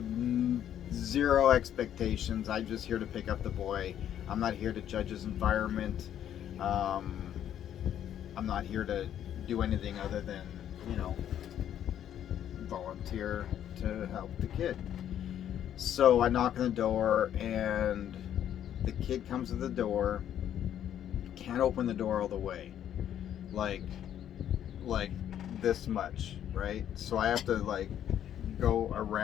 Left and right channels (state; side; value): quieter; right; 10.4 dB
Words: zero expectations. I'm just here to pick up the boy. I'm not here to judge his environment. I'm not here to do anything other than, volunteer to help the kid. So I knock on the door, and the kid comes to the door, can't open the door all the way, like this much, right? So I have to like go